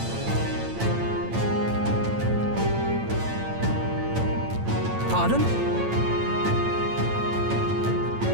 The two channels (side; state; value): left; late; 9.0 ms